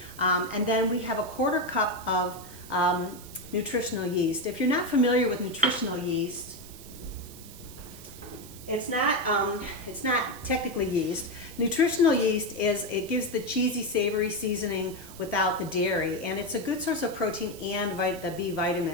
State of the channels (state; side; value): noise; right; hiss, 17 dB below the sound